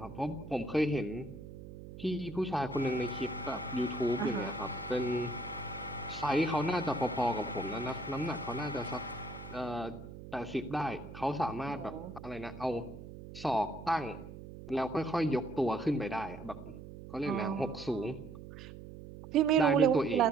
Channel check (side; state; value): right; noise; hum, 13 dB below the sound